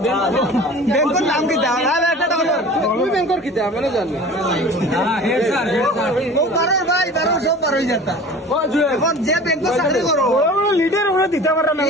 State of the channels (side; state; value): both; normal; correlation 0.41